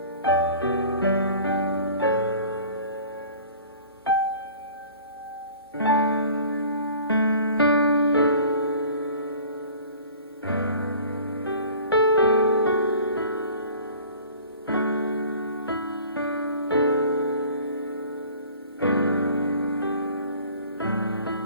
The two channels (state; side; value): inverted; both; correlation -0.46